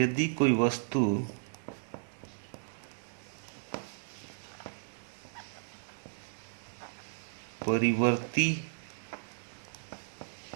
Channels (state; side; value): silent; left; digital silence